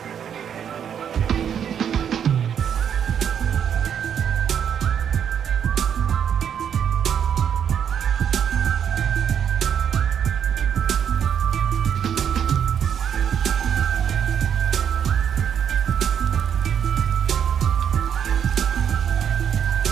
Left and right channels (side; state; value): left; quieter; 8.4 dB